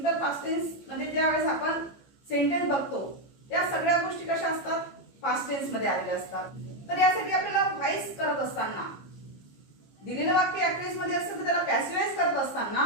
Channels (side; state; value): right; late; 15 ms